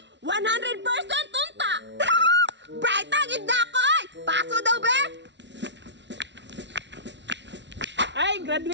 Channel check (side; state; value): left; late; 0.51 ms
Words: 100% unta. Bright agad na ako, oy. Paso daw, be. Ay,